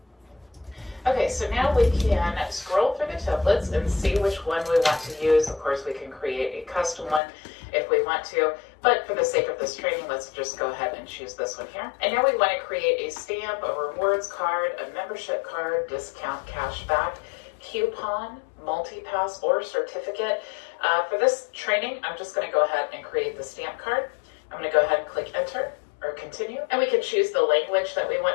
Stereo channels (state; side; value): drops out; right; at 7.2 s